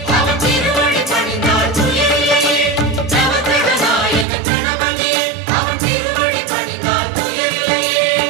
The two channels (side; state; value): left; drops out; at 4.2 s